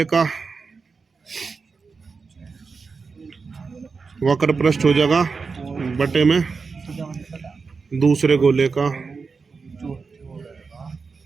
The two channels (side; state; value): left; quieter; 4.8 dB